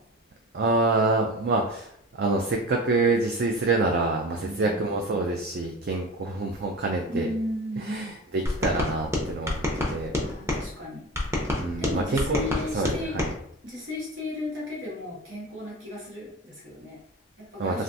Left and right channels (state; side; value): normal; both; correlation 0.31